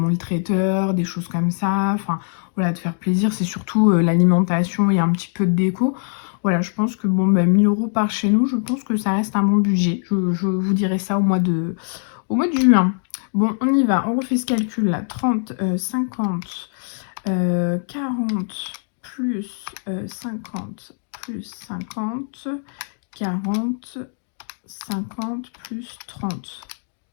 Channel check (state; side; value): silent; right; digital silence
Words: le traiteur, des choses comme ça. Enfin, voilà, de faire plaisir, c'est surtout l'alimentation et un petit peu de déco. Voilà, je pense que, bon, bah, 1000 € par chez nous, je pense que ça reste un bon budget. Je vous dirai ça au mois de juin. Bon, on y va, on refait ce calcul-là. 30, 50... 40 plus 50 plus 50, 40, 50 plus 30.